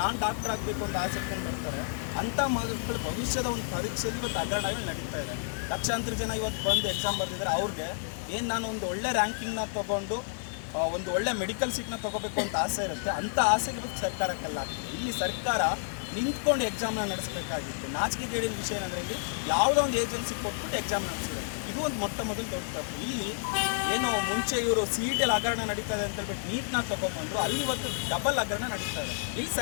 ನಾನು ಡಾಕ್ಟರ್ ಆಗಬೇಕು ಅಂತ ಆಸಕ್ತಿಯನ್ನು ಬರ್ತಾರೆ ಅಂಥ ಮಕ್ಕಳ ಭವಿಷ್ಯದ ಒಂದು ಪರೀಕ್ಷೆಯಲ್ಲಿ ಇವತ್ತು ಹಗರಣಗಳು ನಡೀತಾ ಇದೆ. ಲಕ್ಷಾಂತರ ಜನ ಇವತ್ತು ಬಂದು ಎಕ್ಸಾಮ್ ಬರ್ತಿದ್ದಾರೆ. ಅವ್ರಿಗೆ ಏನು ನಾನು ಒಂದು ಒಳ್ಳೆ ರ್ಯಾಂಕಿಂಗ್ನ ತೊಗೊಂಡು ಒಂದು ಒಳ್ಳೆ ಮೆಡಿಕಲ್ ಸೀಟ್ನ ತೊಗೋಬೇಕು ಅಂತ ಆಸೆ ಇರುತ್ತೆ. ಅಂಥ ಆಸೆಗೆ ಇವತ್ತು ಸರ್ಕಾರಕ್ಕೆಲ್ಲ ಆಗ್ತದೆ. ಇಲ್ಲಿ ಸರ್ಕಾರ ನಿಂತ್ಕೊಂಡು ಎಕ್ಸಾಮ್ನ ನಡೆಸಬೇಕಾಗಿತ್ತು. ನಾಚಿಕೆಗೇಡಿನ ವಿಷಯ ಏನಂದರೆ ಇಲ್ಲಿ ಯಾವುದೋ ಒಂದು ಏಜೆನ್ಸಿ ಕೊಟ್ಬಿಟ್ಟು ಎಕ್ಸಾಮ್ ನಡೆಸಿದೆ. ಇದು ಒಂದು ಮೊಟ್ಟ ಮೊದಲು ದೊಡ್ಡ ತಪ್ಪು. ಇಲ್ಲಿ ಏನೋ ಮುಂಚೆ ಇವರು CET ಹಗರಣ ನಡೀತಾ ಇದೆ ಅಂತ ಹೇಳ್ಬಿಟ್ಟು ನೀಟ್ನ ತೊಗೊಂಡ್ಬಂದರು. ಅಲ್ಲಿ ಇವತ್ತು ಡಬಲ್ ಹಗರಣ ನಡೀತಾ ಇದೆ. ಇಲ್ಲಿ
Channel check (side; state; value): right; silent; 58 dB below the other